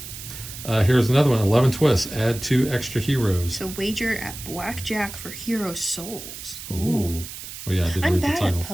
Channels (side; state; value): right; noise; hiss, 11 dB below the sound